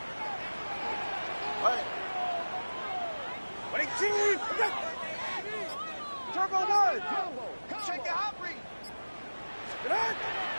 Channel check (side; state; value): both; inverted; correlation -1.00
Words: Ready, team. Turbo 1. Check the hot read.